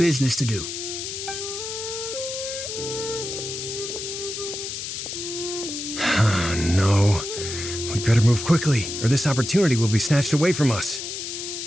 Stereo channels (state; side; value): noise; left; hiss, 6 dB below the sound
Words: to do. No. We better move quickly, or this opportunity will be snatched away from us.